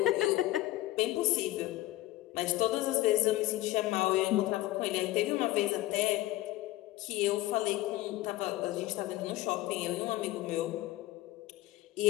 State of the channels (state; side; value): quieter; right; 16.8 dB